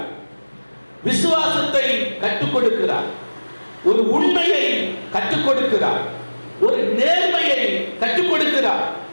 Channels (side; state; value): both; inverted; correlation -1.00